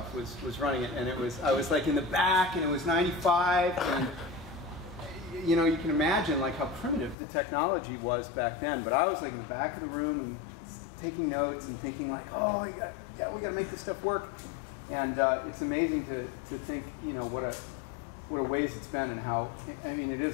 was running it, and I was like in the back, and it was '95, and you know, you can imagine like how primitive the technology was back then. But I was like in the back of the room and taking notes and thinking like, oh yeah, we got to make this stuff work. And it's amazing to think, you know, what a ways it's been, and how, I mean, it is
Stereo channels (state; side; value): drops out; right; at 7.2 s